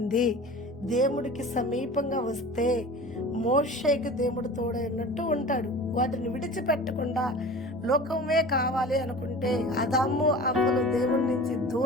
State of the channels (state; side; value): normal; both; correlation 0.38